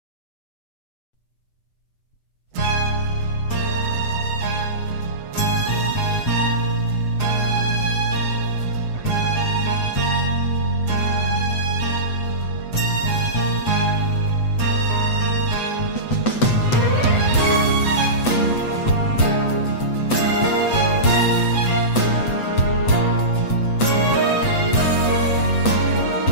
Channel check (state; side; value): late; right; 8.0 ms